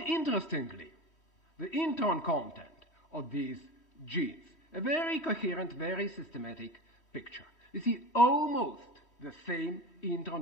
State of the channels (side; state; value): right; late; 3.1 ms